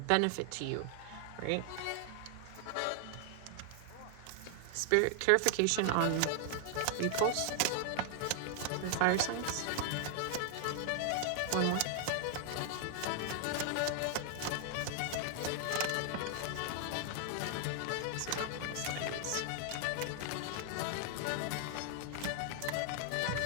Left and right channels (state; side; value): different; both; correlation 0.00